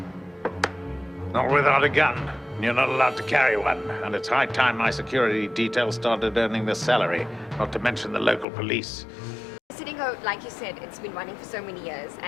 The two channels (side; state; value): right; drops out; at 8.5 s